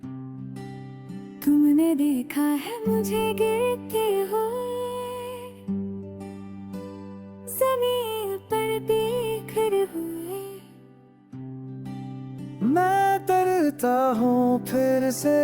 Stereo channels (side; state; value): both; identical; correlation 1.00